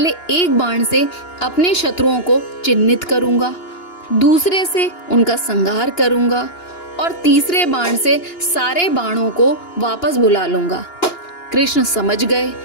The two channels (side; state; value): right; late; 2.9 ms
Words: एक बाण से अपने शत्रुओं को चिन्हित करूंगा, दूसरे से उनका संहार करूंगा और तीसरे बाण से सारे बाणों को वापस बुला लूंगा। कृष्ण समझ गए